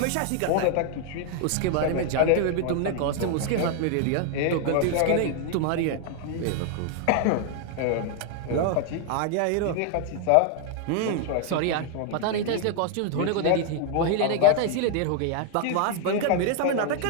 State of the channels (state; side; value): different; both; correlation 0.00